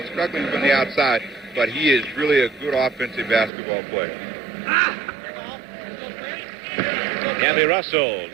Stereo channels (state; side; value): drops out; left; at 3.5 s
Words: struggling from the outside, but he is really a good offensive basketball player. Campy Russell